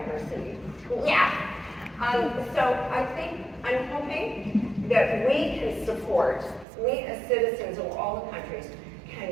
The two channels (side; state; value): left; drops out; at 6.7 s